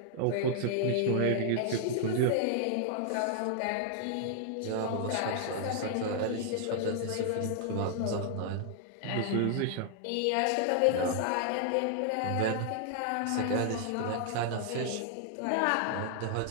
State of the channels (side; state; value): both; different; correlation 0.00